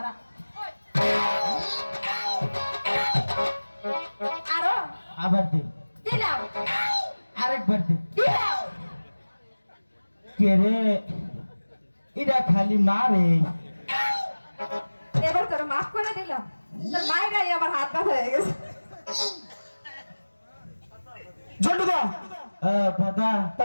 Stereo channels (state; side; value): inverted; both; correlation -1.00